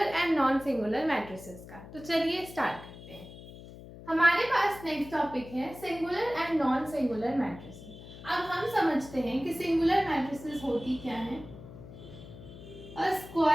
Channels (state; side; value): noise; left; hum, 16 dB below the sound